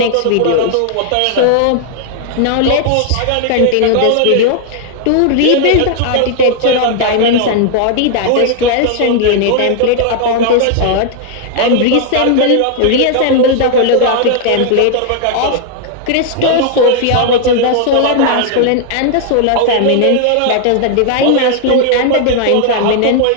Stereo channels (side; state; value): both; different; correlation 0.00